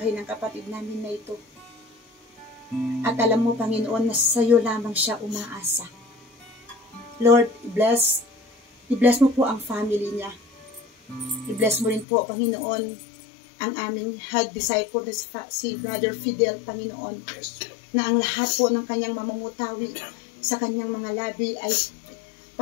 ng kapatid namin na ito. At alam mo, Panginoon, na sa iyo lamang siya umaasa. Lord, i-bless mo po ang family niya. I-bless mo rin po, Panginoon, ang aming head disciple na si Brother Fidel, Panginoon, na ang lahat po ng kanyang mamamutawi sa kanyang mga labi ay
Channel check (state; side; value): drops out; right; at 12.1 s